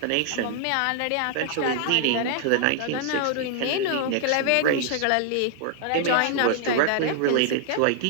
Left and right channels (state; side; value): different; both; correlation -0.01